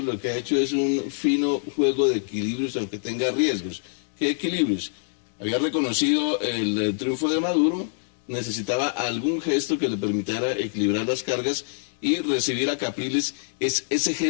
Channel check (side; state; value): right; silent; digital silence